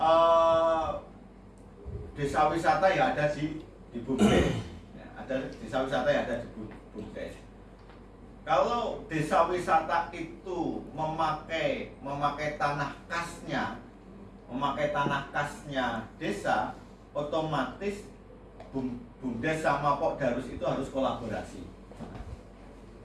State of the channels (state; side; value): identical; both; correlation 1.00